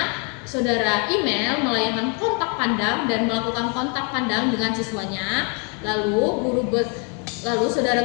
saudara Email melayangkan kontak pandang dan melakukan kontak pandang dengan siswanya. Lalu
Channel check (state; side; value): quieter; right; 36.2 dB